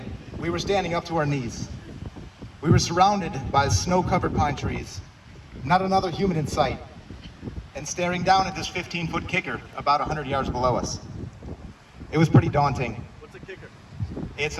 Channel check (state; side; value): identical; both; correlation 1.00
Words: We were standing up to our knees. We were surrounded by snow-covered pine trees, not another human in sight, and staring down at this 15-foot kicker about 100 yards below us. It was pretty daunting. What's a kicker? It's